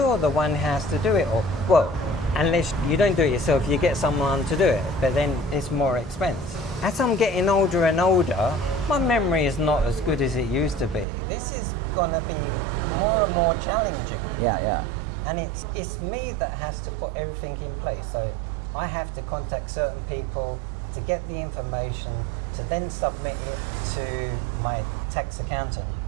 the one who has to do it. Or, well, unless you don't do it yourself, you get someone to do it, but then it's more expense. As I'm getting older and older, my memory is not as good as it used to be. This is gonna be more and more challenging. Yeah. And it's me that has to put everything in place. So I have to contact certain people to get the information, to then submit it to my tax accountant,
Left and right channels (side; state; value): left; drops out; at 11.1 s